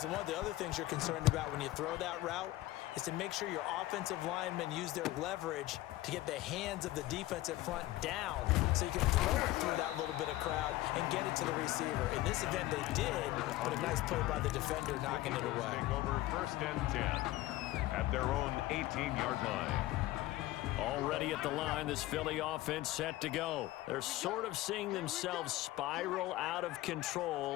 And one of the other things you're concerned about when you throw that route is to make sure your offensive linemen use their leverage to get the hands of the defensive front down so you can throw it through that little bit of crowd and get it to the receiver. In this event, they did, but a nice play by the defender knocking it away. Over 1st and 10 at their own 18-yard line. Already at the line, this Philly offense set to go. They're sort of seeing themselves spiral out of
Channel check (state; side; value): quieter; right; 16.8 dB